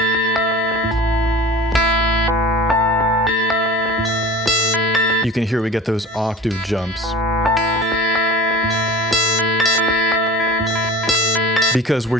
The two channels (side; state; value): both; normal; correlation 0.38